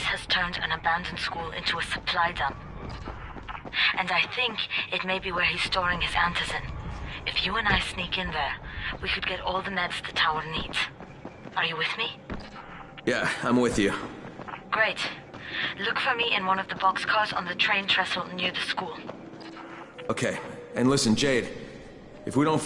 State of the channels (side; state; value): both; identical; correlation 1.00